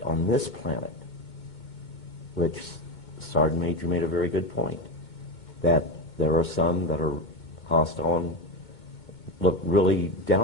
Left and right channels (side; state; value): right; late; 2.2 ms